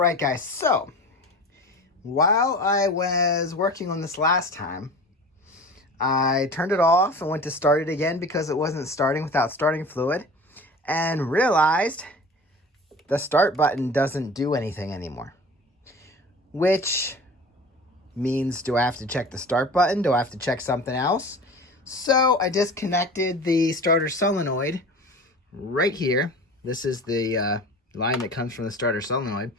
guys. So, while I was working on this last time, I turned it off and went to start it again because it wasn't starting without starting fluid, and realized the start button doesn't do anything anymore. Which means, do I have to check the start button? Do I have to check something else? So I disconnected the starter solenoid right here. This is the line that comes from the starter solenoid.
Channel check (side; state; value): both; normal; correlation 0.38